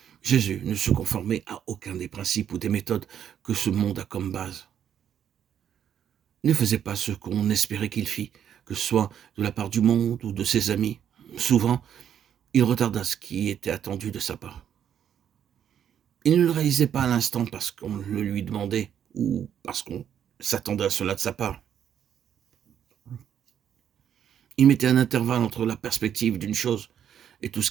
Jésus ne se conformait à aucun des principes ou des méthodes que ce monde a comme base. Il ne faisait pas ce qu'on espérait qu'il fît, que ce soit de la part du monde ou de ses amis. Souvent, il retarda ce qui était attendu de sa part. Il ne le réalisait pas à l'instant parce qu'on le lui demandait ou parce qu'on s'attendait à cela de sa part. Il mettait un intervalle entre la perspective d'une chose et tout ce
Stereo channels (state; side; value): quieter; left; 9.2 dB